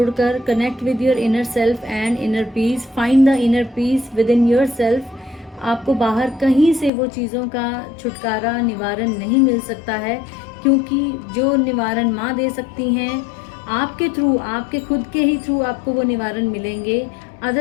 connect with your inner self and inner peace, find the inner peace with in your self. आपको बाहर कहीं से वो चीज़ों का छुटकारा, निवारण नहीं मिल सकता है, क्योंकि जो निवारण माँ दे सकती हैं आपके थ्रू, आपके खुद के ही थ्रू आपको वो निवारण मिलेंगे।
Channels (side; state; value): right; drops out; at 6.9 s